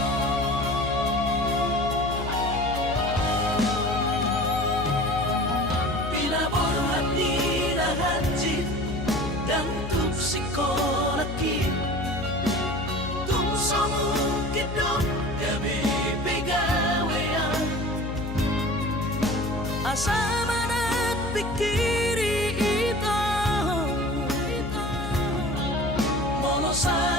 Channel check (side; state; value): left; noise; hum, 6 dB below the sound